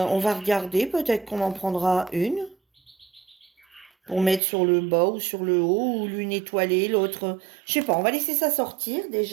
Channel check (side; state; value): left; drops out; at 4.4 s